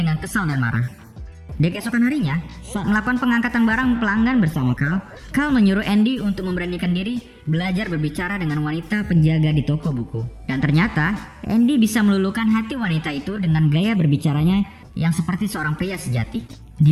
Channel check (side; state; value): both; identical; correlation 1.00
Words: kesal dan marah. Di keesokan harinya, saat melakukan pengangkatan barang pelanggan bersama Carl menyuruh Andy untuk memberanikan diri belajar berbicara dengan wanita penjaga di toko buku. Dan ternyata, Andy bisa meluluhkan hati wanita itu dengan gaya berbicaranya yang seperti seorang pria sejati. Di